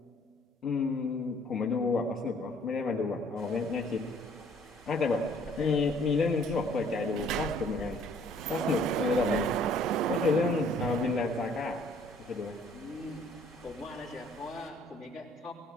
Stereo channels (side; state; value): both; normal; correlation 0.59